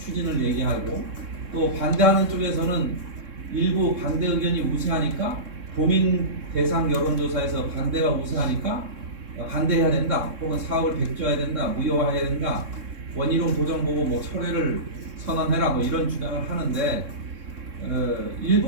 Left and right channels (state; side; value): late; left; 3.7 ms